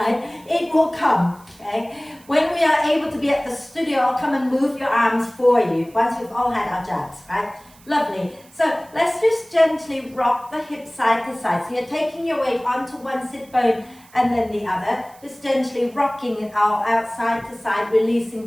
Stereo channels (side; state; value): right; noise; hiss, 26 dB below the sound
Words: It will come, okay? When we are able to be at the studio, I'll come and move your arms for you once we've all had our jabs, right? Lovely. So let's just gently rock the hips side to side. So you're taking your weight onto one sit bone and then the other, just gently rocking it out side to side,